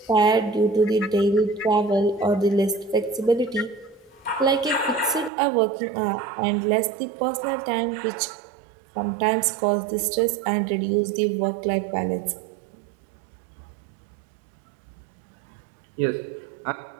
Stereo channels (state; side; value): drops out; left; at 5.3 s